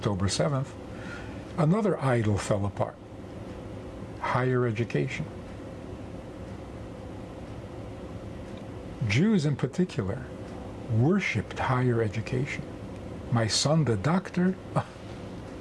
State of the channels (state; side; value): identical; both; correlation 1.00